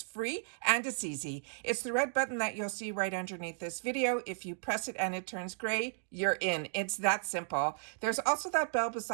free and it's easy. It's the red button that you'll see right underneath this video. If you press it and it turns gray, you're in. It's that simple. There's also that bell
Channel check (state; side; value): silent; left; digital silence